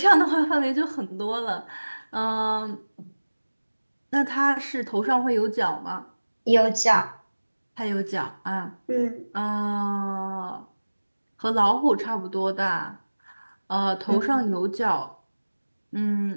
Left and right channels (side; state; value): both; inverted; correlation -1.00